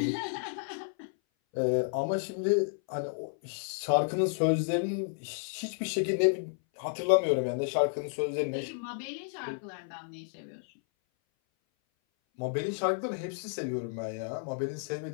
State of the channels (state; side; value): silent; right; 57 dB below the other